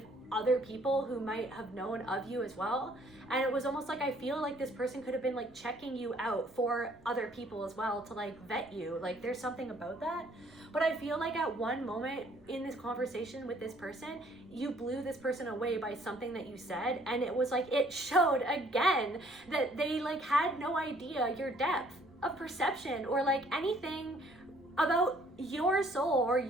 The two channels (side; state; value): right; noise; rumble, 28 dB below the sound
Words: other people who might have known of you as well. And it was almost like I feel like this person could have been like checking you out for other people as well to like vet you. Like there's something about that. But I feel like at one moment in this conversation with this person, you blew this person away by something that you said, and it was like it showed again that they like had no idea your depth of perception or like anything about your soul or